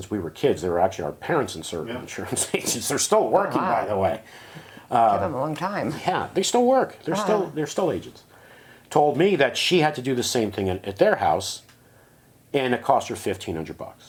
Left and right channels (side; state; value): both; identical; correlation 1.00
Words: we were kids, they were actually our parents' insurance agents. They're still working, wow. by the way. Give them a long time. Yeah, they still work. They're still agents. Told me that she had to do the same thing at their house, and it cost her